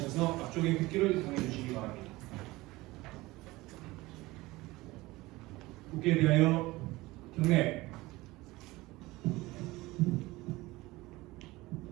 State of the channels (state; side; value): quieter; left; 20.1 dB